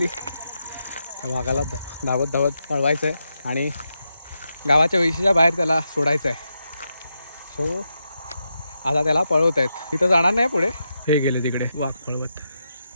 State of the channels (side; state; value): both; inverted; correlation -0.86